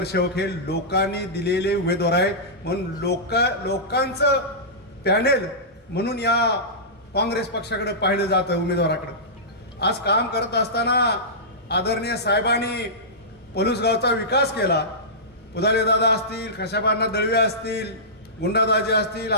हे लोकांनी दिलेले उमेदवार आहेत. म्हणून लोकांचं पॅनल म्हणून या काँग्रेस पक्षाकडे पाहिलं जातं, उमेदवाराकडे. आज काम करत असताना आदरणीय साहेबांनी पलूस गावचा विकास केला. पुदाले दादा असतील, खशाबांना दळवे असतील, गुंडादाजी असतील,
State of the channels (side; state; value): both; normal; correlation -0.17